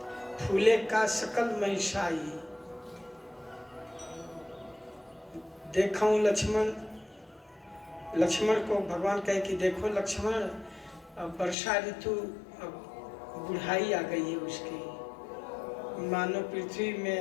फूले का सकल महिषाई, देखूं लक्ष्मण। लक्ष्मण को भगवान कहे कि देखो लक्ष्मण, अब वर्षा ऋतु, अब बुढ़ाई आ गई है उसकी, मानो पृथ्वी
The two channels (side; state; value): right; drops out; at 11.6 s